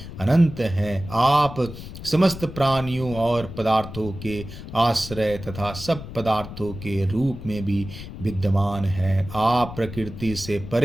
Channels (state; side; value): noise; left; rumble, 12 dB below the sound